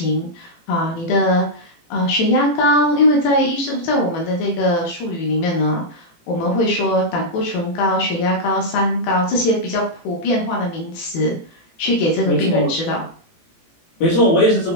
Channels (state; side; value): late; right; 18 ms